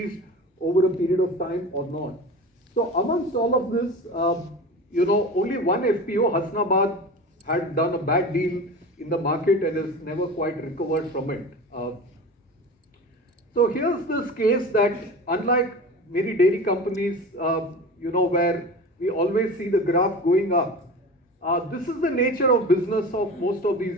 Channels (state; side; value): normal; both; correlation 0.33